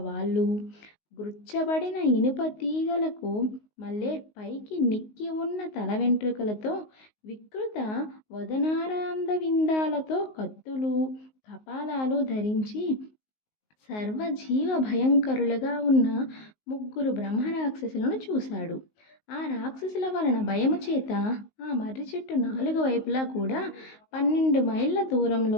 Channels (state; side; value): late; right; 19 ms